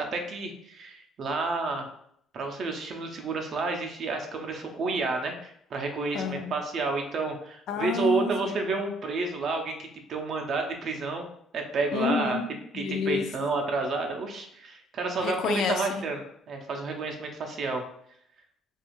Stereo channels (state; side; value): normal; both; correlation 0.63